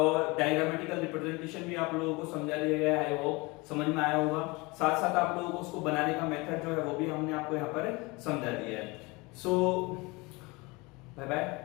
डायग्रामेटिकल रिप्रेजेंटेशन भी आप लोगों को समझा दिया गया है, वो समझ में आया होगा। साथ साथ आप लोगों को उसको बनाने का मेथड जो है वो भी हमने आपको यहाँ पर समझा दिया है। So bye bye,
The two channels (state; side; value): quieter; right; 25.1 dB